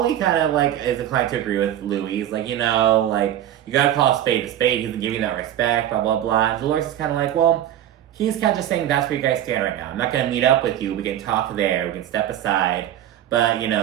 kind of, like, is inclined to agree with Louie. He's like, you know, like, you gotta call a spade a spade. He doesn't give you that respect, blah, blah, blah. And Dolores is kind of like, well, he's kind of just saying that's where you guys stand right now. I'm not gonna meet up with you. We can talk there. We can step aside. But, you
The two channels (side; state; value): left; quieter; 11.6 dB